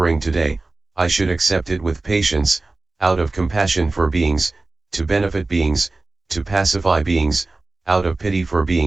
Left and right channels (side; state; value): left; quieter; 3.3 dB